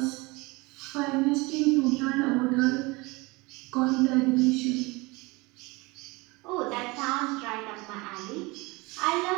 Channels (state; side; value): quieter; left; 24.5 dB